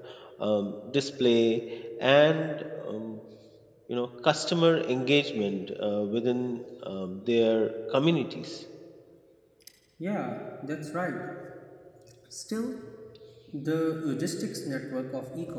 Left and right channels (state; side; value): identical; both; correlation 1.00